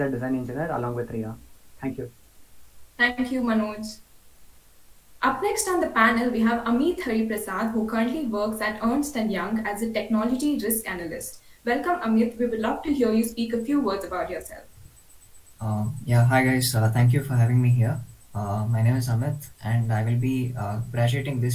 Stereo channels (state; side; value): identical; both; correlation 1.00